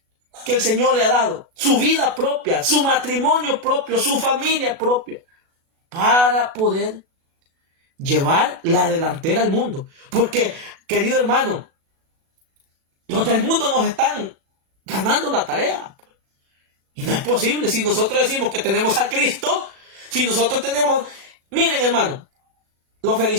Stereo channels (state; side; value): late; left; 37 ms